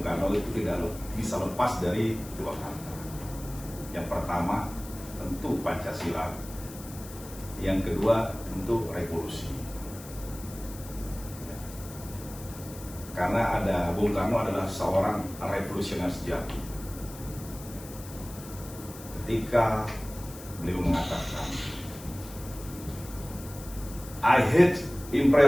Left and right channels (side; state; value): left; noise; hiss, 16 dB below the sound